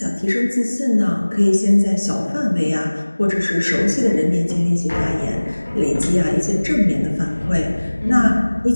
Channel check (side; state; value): both; inverted; correlation -1.00